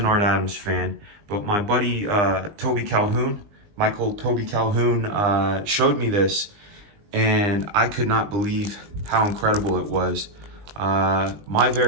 Art Adams fan, but my buddy Toby Calhoun, Michael Toby Calhoun, showed me this, and I could not believe how incredible it was. My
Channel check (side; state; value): left; late; 20 ms